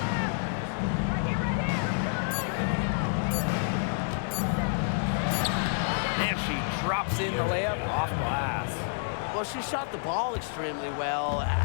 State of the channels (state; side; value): silent; right; 59 dB below the other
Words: Drops in the layup off glass. Well, she shot the ball extremely well,